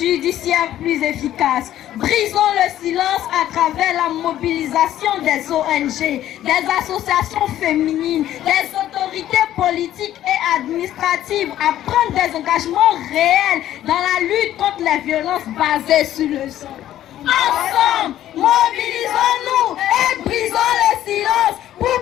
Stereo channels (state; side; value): quieter; right; 12.5 dB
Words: plus efficace. Brisons le silence à travers la mobilisation des ONG, des associations féminines, des autorités politiques et administratives à prendre des engagements réels dans la lutte contre les violences basées sur le sang. Ensemble, mobilisons-nous et brisons le silence